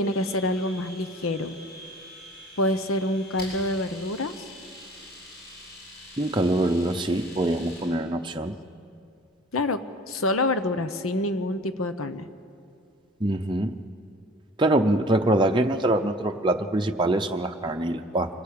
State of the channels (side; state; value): both; normal; correlation 0.48